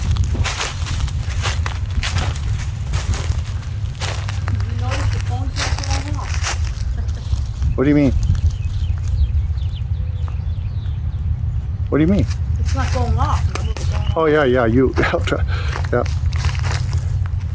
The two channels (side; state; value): both; identical; correlation 1.00